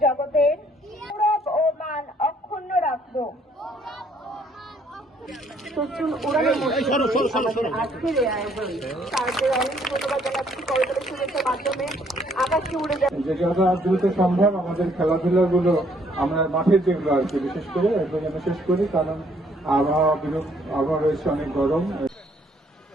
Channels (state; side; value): normal; both; correlation 0.65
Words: জগতের গৌরব ও মান অক্ষুণ্ণ রাখব। সচল উড়ানের মধ্যে আজকের এই আয়োজন তাদের অনেক ধন্যবাদ জানাচ্ছি। করতালি শুভেচ্ছার মাধ্যমে আকাশে উড়ে যাচ্ছে। যে যত দ্রুত সম্ভব আমাদের খেলাধুলাগুলো আমরা মাঠের যেগুলো আর কি বিশেষ করে একদম যেন শেষ করি, কারণ আবহাওয়া রয়েছে অনেক গরম।